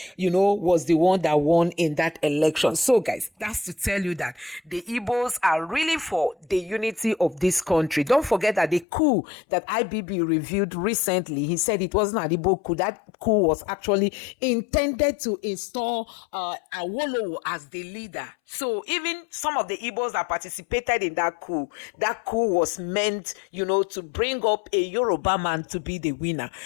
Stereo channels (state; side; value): drops out; right; at 8.8 s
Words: was the one that won in that election. So, guys, that's to tell you that the Igbos are really for the unity of this country. Don't forget that the coup that IBB reviewed recently, he said it wasn't an Igbo coup. That coup was actually intended to install Awolowo as the leader. So even some of the Igbos that participated in that coup was meant, to bring up a Yoruba man to be the winner,